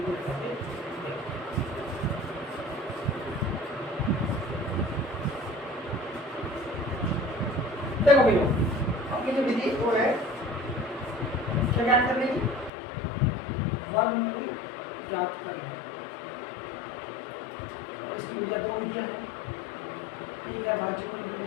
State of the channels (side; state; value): right; drops out; at 12.7 s